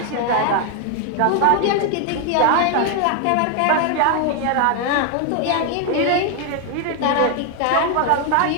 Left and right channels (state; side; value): different; both; correlation 0.01